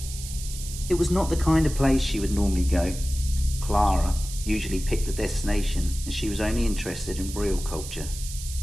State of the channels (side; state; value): right; noise; hiss, 11 dB below the sound